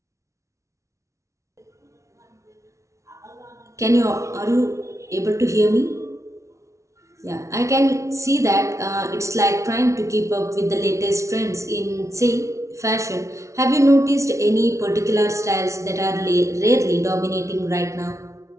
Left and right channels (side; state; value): left; late; 0.14 ms